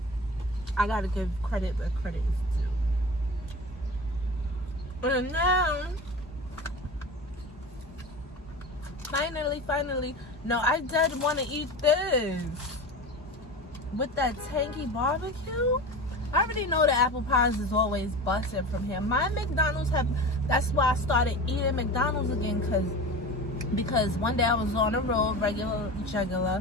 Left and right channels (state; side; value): normal; both; correlation 0.31